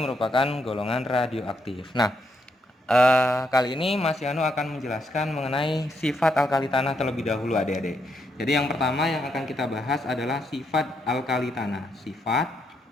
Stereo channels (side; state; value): both; normal; correlation 0.78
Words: golongan radioaktif. Nah, kali ini Mas Yano akan menjelaskan mengenai sifat alkali tanah terlebih dahulu adik-adik. Jadi yang pertama yang akan kita bahas adalah sifat alkali tanah. Sifat